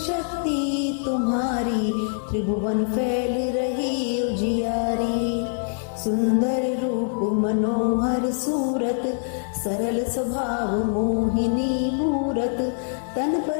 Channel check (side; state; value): right; silent; digital silence